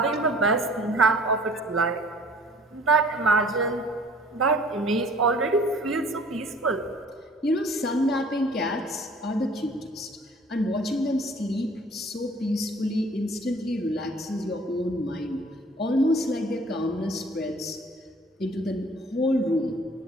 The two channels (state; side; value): normal; both; correlation 0.51